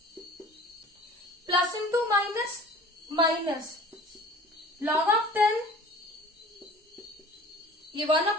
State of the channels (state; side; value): normal; both; correlation 0.44